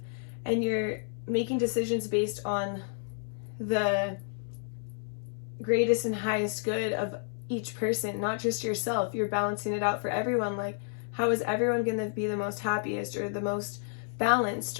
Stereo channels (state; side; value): silent; right; 57 dB below the other